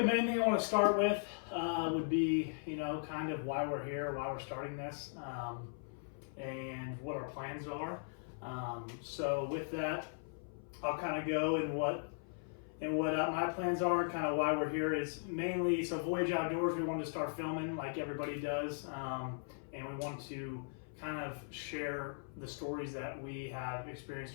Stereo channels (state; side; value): silent; right; 52 dB below the other